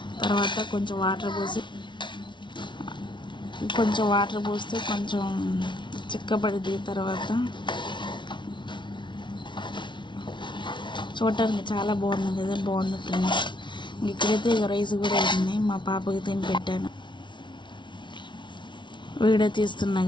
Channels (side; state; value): right; late; 0.23 ms